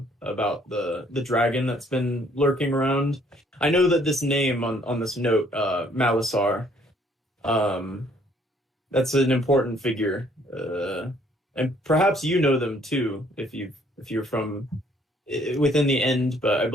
about the dragon that's been lurking around. I know that this name on this note, Malisar, that's an important figure, and perhaps you know them too if you're from within the End. But I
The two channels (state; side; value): normal; both; correlation 0.63